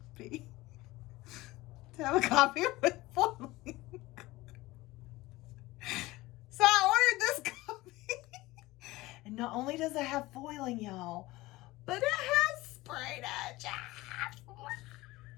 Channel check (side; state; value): right; quieter; 19.4 dB